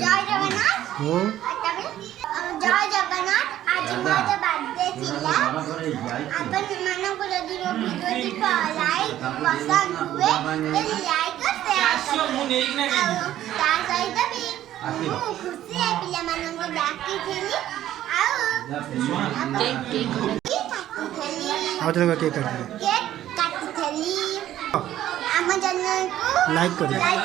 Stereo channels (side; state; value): left; quieter; 12.6 dB